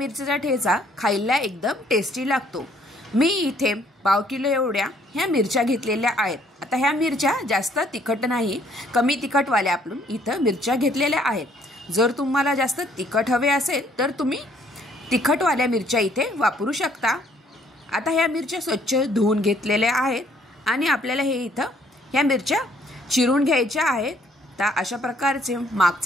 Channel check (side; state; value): both; normal; correlation 0.64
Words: ठेचा खायला एकदम टेस्टी लागतो। मी इथे पाव किलो एवढ्या ह्या मिरच्या घेतलेल्या आहेत। आता ह्या मिरच्या जास्त तिखट नाही, कमी तिखटवाल्या आपण इथं मिरच्या घेतलेल्या आहेत। जर तुम्हाला जास्त तिखट हवे असेल तर तुम्ही तिखटवाल्या मिरच्या इथे वापरू शकता। आता ह्या मिरच्या स्वच्छ धुवून घेतलेल्या आहेत आणि आपल्याला हे इथं ह्या मिरच्या चिरून घ्यायच्या आहेत। तर अशा प्रकारचे